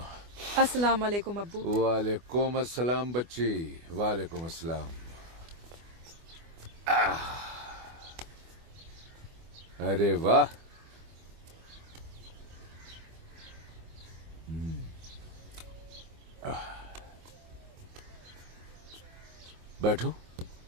अस्सलाम वालेकुम अब्बू। वालेकुम अस्सलाम बच्ची, वालेकुम अस्सलाम। अरे वाह, बैठो।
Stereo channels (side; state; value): left; late; 24 ms